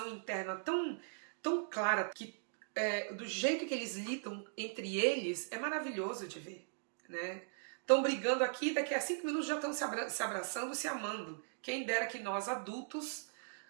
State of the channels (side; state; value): left; silent; digital silence